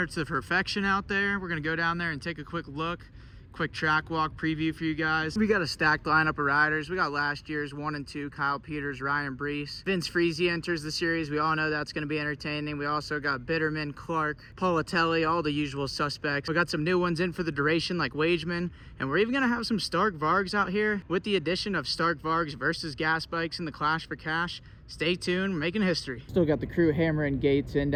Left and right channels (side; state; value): both; identical; correlation 1.00